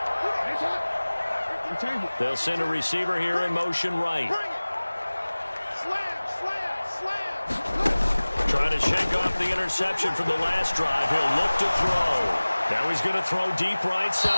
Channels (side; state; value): both; inverted; correlation -1.00